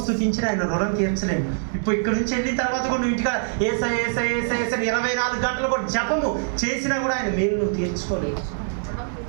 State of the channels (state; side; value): silent; left; digital silence